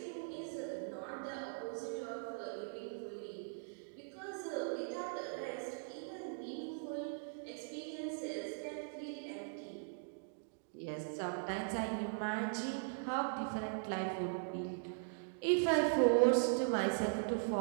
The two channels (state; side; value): silent; left; digital silence